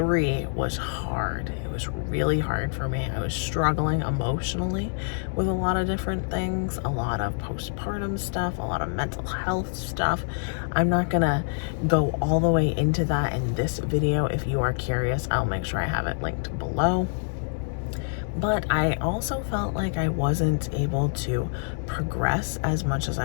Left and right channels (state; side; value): silent; right; 61 dB below the other